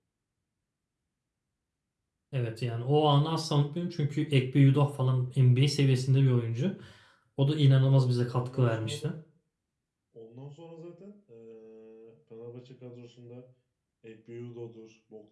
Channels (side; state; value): both; identical; correlation 1.00